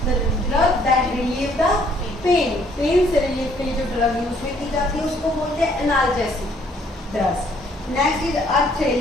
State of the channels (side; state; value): both; normal; correlation 0.64